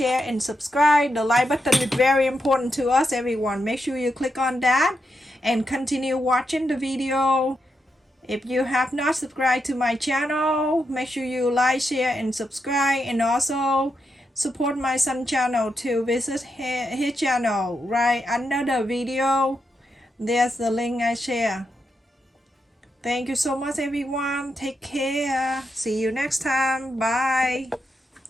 and subscribe. The like button is very important to us, everyone. Make sure you click on that and continue watching the video. If you have not subscribed to my channel, make sure you like, share, and subscribe, and also support my son's channel to visit his channel right under the video. There's the link I share. Thank you so much, everyone. Take care. See you next time. Bye.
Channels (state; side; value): normal; both; correlation 0.84